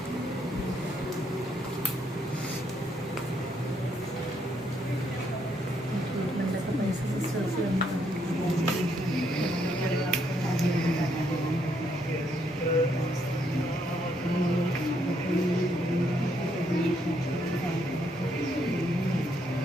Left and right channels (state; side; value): normal; both; correlation 0.73